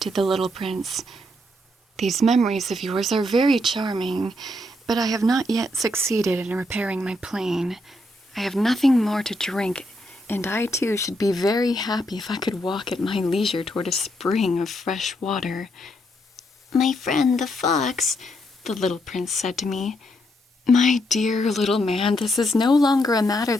to the little prince, "These memories of yours are very charming, but I have not yet succeeded in repairing my plane. I have nothing more to drink, and I too should be very happy if I could walk at my leisure toward a spring of fresh water." "My friend the fox," the little prince said to me, "My dear little man, this is no longer a matter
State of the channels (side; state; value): both; normal; correlation 0.77